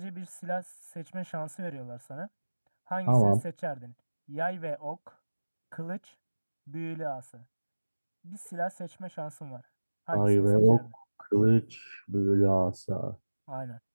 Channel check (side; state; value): both; inverted; correlation -1.00